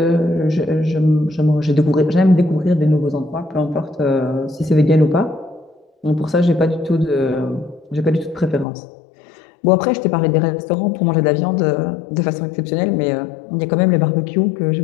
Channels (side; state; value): right; drops out; at 8.7 s